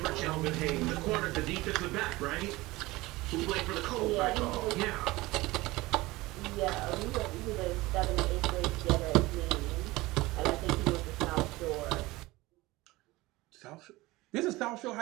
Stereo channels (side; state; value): left; quieter; 20.2 dB